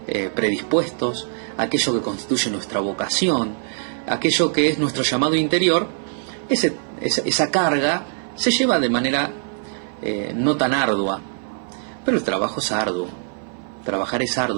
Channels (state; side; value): silent; left; 57 dB below the other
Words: predispuestos, aquello que constituye nuestra vocación, aquello que es nuestro llamado interior, esa carga se lleva de manera no tan ardua. Pero el trabajo es arduo. Trabajar es